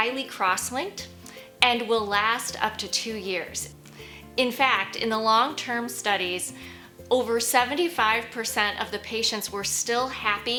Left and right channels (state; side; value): identical; both; correlation 1.00